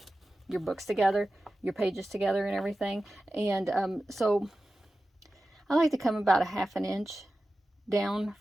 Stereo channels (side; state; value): both; normal; correlation 0.94